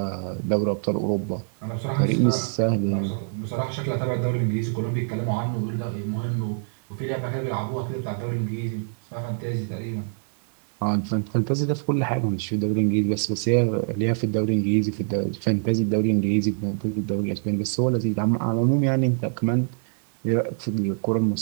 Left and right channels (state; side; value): silent; left; digital silence